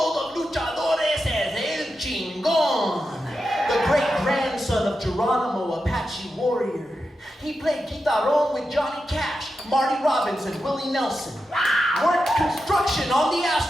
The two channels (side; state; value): both; normal; correlation 0.89